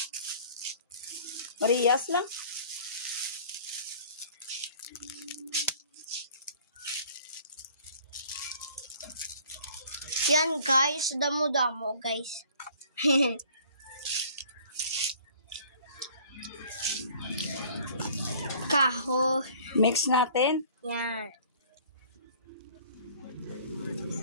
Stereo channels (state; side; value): inverted; both; correlation -0.53